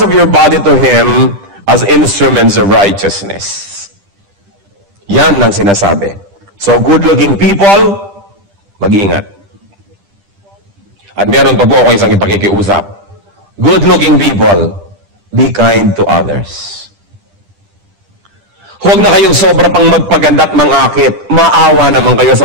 of your body to Him as instruments of righteousness. Yan ang sinasabi. So good-looking people, mag-iingat. At meron pa po ako isang ipakikiusap. Good-looking people, be kind to others. Huwag na kayong sobra pang magpaganda at mangakit. Maawa naman kayo sa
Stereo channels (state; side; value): late; left; 10 ms